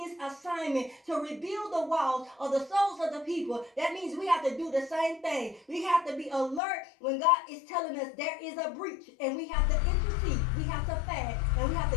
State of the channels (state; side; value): drops out; right; at 6.6 s